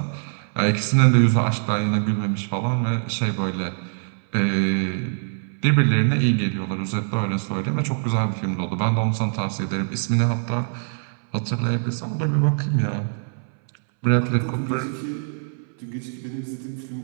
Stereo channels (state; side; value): silent; left; 63 dB below the other